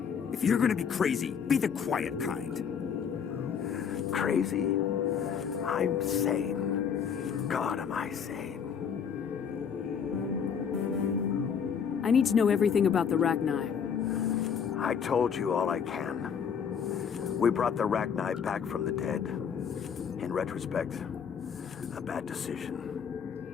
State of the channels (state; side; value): quieter; right; 7.2 dB